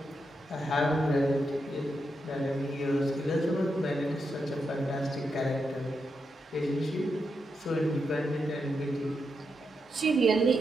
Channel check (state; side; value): normal; both; correlation 0.84